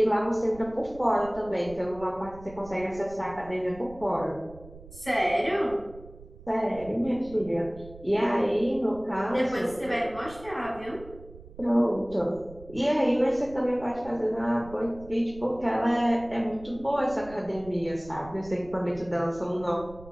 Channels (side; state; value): right; noise; rumble, 18 dB below the sound